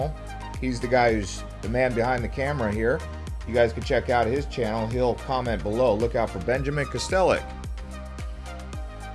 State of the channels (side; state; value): both; identical; correlation 1.00